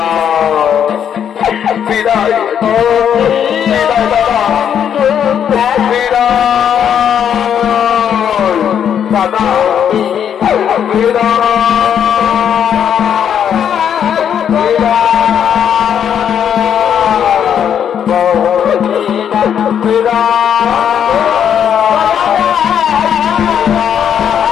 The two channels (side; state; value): right; quieter; 8.7 dB